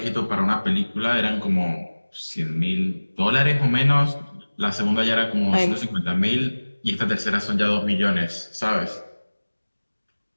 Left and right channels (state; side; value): inverted; both; correlation -1.00